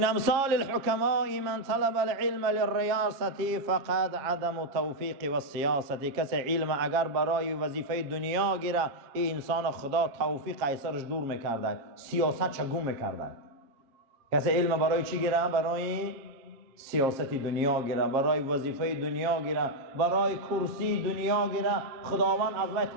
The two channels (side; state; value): left; late; 7.3 ms